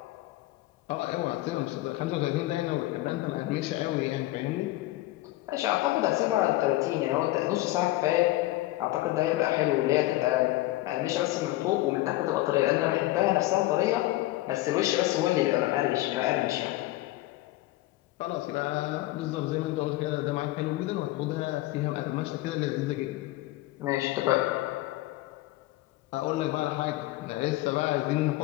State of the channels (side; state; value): right; quieter; 17.7 dB